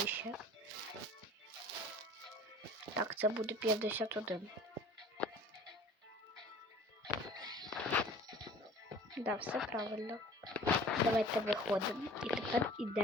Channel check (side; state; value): both; normal; correlation 0.46